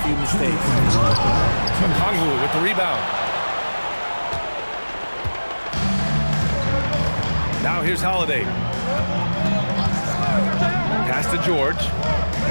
few mistakes. Okongwu with the rebound. Now here's Holiday. Pass to George.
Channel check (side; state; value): both; inverted; correlation -1.00